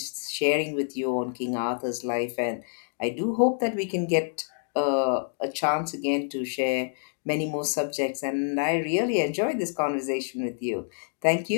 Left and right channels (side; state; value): right; silent; digital silence